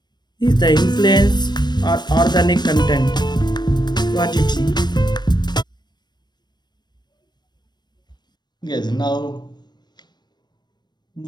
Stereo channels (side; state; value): right; late; 0.21 ms